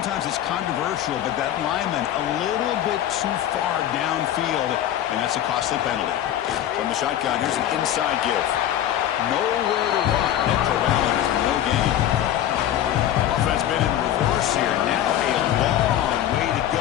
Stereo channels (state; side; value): quieter; right; 11.7 dB